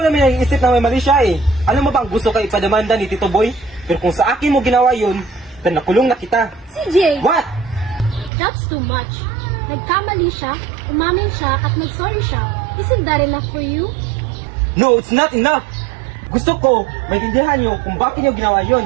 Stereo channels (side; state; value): left; drops out; at 8.3 s